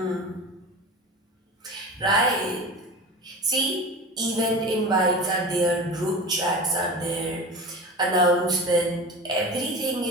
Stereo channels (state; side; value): normal; both; correlation 0.31